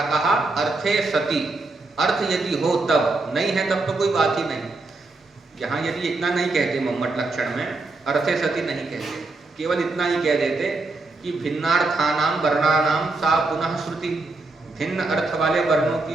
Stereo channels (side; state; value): left; quieter; 3.4 dB